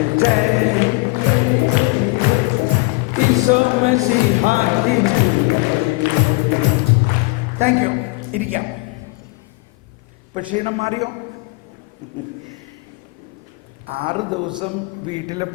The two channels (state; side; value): quieter; right; 24.5 dB